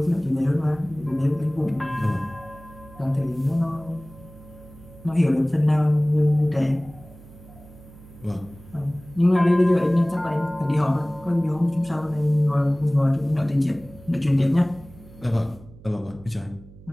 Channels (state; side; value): noise; right; hum, 21 dB below the sound